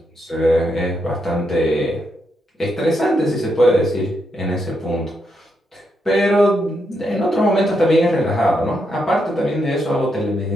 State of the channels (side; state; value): both; normal; correlation 0.81